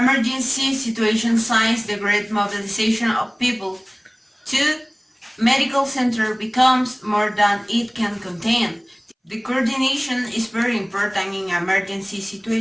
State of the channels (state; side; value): identical; both; correlation 1.00